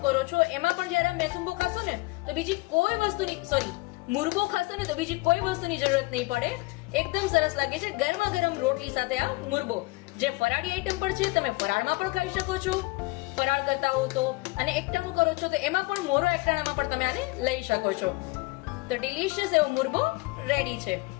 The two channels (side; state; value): right; quieter; 24.3 dB